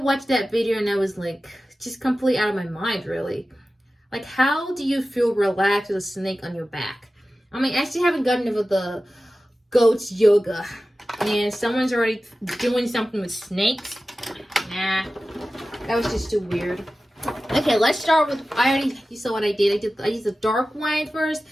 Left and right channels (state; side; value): normal; both; correlation 0.95